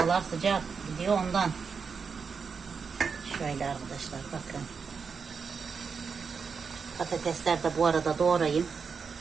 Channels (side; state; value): left; quieter; 5.6 dB